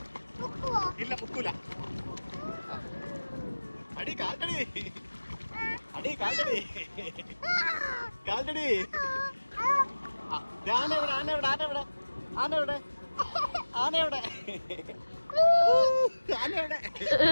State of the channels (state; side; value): inverted; both; correlation -1.00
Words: ഇല്ല മുക്കൂല. അടി കാൽട്ടടി, അടി കാൽട്ടടി, കാൽട്ടടി. ആനവിടെ, ആനവിടെ, ആനവിടെ, ആനവിടെ, ആനവിടെ, ആനവിടെ.